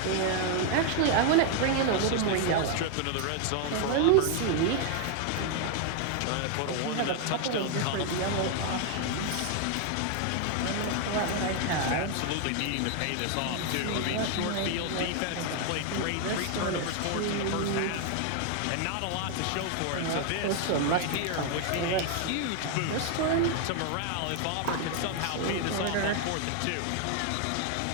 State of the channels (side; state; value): both; different; correlation 0.00